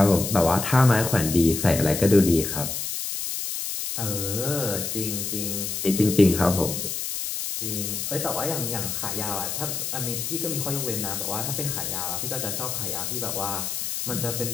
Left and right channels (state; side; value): noise; left; hiss, 3 dB below the sound